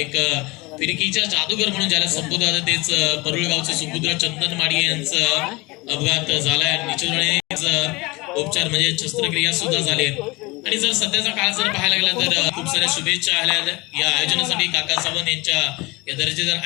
फिरकीच्या जादूगर म्हणून ज्याला संबोधतात तेच परुळगावचे सुपुत्र चंदन माडिये यांचा अपघात झालाय आणि निश्चितपणे उपचार म्हणजे शस्त्रक्रिया सुद्धा झाली आणि जर सध्याचा काळ जर पाहायला गेला तर खूप साऱ्या शुभेच्छा आल्या या आयोजनासाठी. काका सावंत यांच्या या दर्जेदार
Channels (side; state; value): right; quieter; 23.9 dB